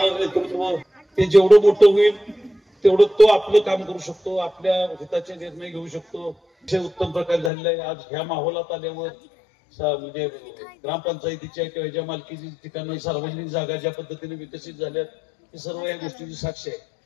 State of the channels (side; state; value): right; drops out; at 7.5 s